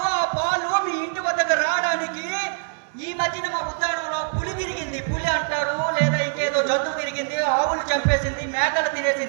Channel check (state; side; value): silent; left; 63 dB below the other